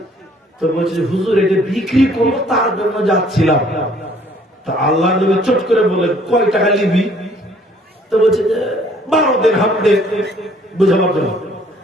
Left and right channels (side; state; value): both; normal; correlation 0.60